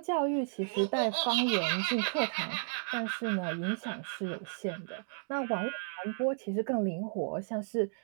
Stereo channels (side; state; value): left; silent; digital silence